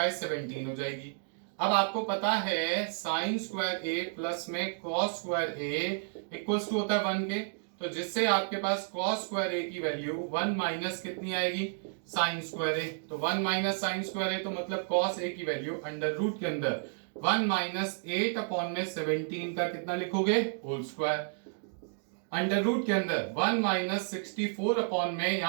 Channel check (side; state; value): left; silent; digital silence